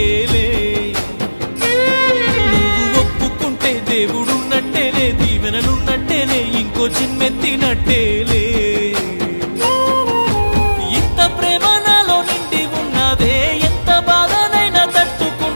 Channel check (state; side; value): inverted; both; correlation -1.00